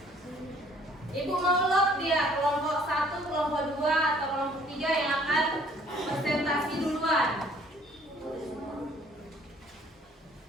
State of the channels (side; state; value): both; normal; correlation 0.58